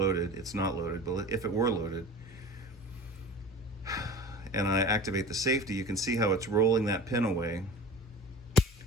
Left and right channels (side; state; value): both; normal; correlation 0.37